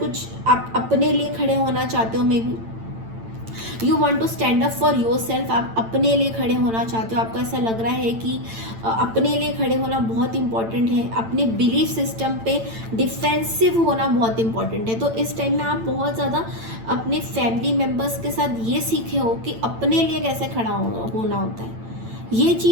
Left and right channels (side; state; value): left; late; 8.9 ms